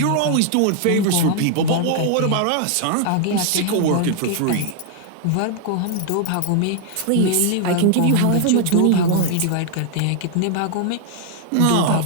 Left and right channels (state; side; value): different; both; correlation 0.00